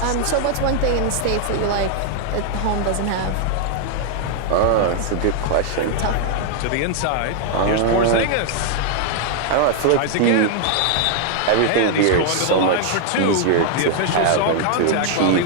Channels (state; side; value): different; both; correlation 0.00